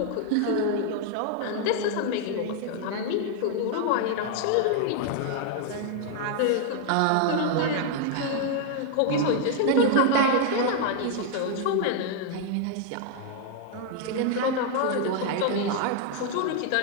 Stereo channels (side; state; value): both; different; correlation 0.00